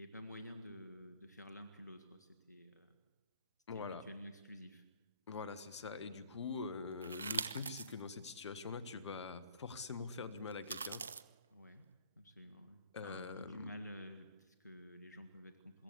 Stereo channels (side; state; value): both; inverted; correlation -0.58